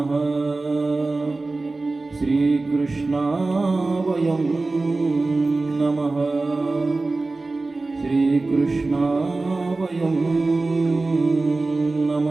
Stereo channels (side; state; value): left; quieter; 3.4 dB